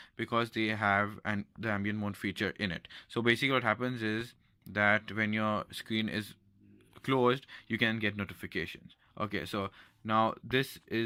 because they have the ambient mode feature in it. So basically, what happens is that when your screen is closed, you can get notifications. Okay, so now this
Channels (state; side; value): identical; both; correlation 1.00